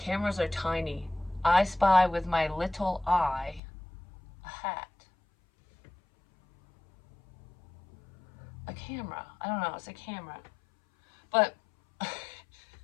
are tiny. I spy with my little eye a hat. A camera. I don't know, it's a camera. But I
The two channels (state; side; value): drops out; right; at 3.6 s